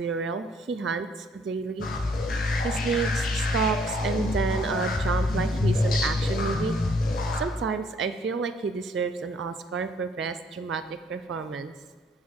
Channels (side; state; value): both; normal; correlation 0.64